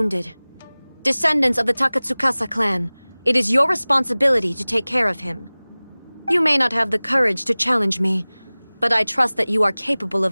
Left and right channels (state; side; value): inverted; both; correlation -1.00